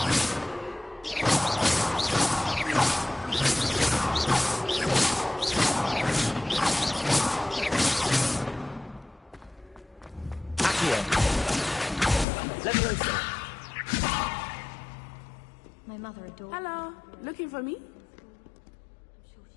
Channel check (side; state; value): right; drops out; at 12.2 s